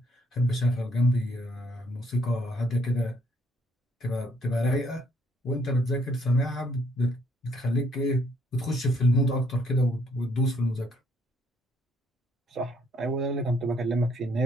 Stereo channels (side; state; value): both; normal; correlation 0.68